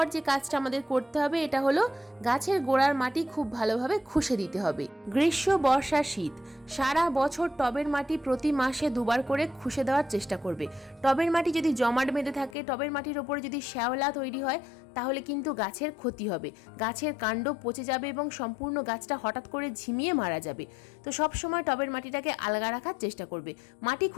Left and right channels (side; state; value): right; drops out; at 12.6 s